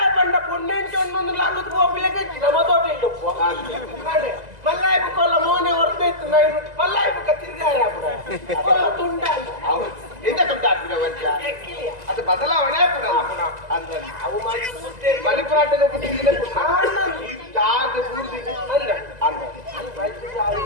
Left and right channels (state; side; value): late; left; 2.0 ms